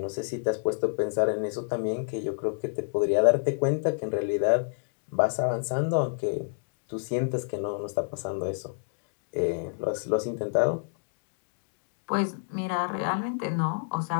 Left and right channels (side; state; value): right; silent; digital silence